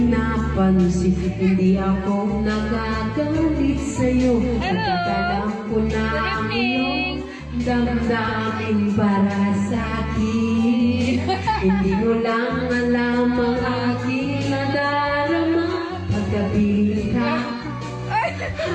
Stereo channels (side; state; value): both; identical; correlation 1.00